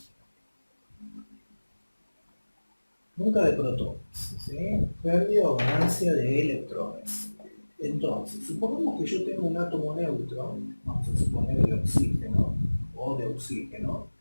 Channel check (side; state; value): both; inverted; correlation -1.00